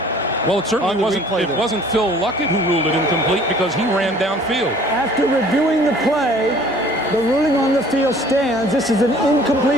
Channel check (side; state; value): both; normal; correlation 0.52